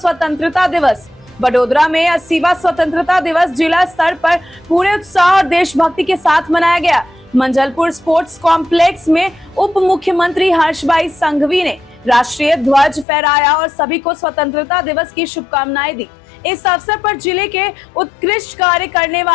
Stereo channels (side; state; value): right; drops out; at 13.1 s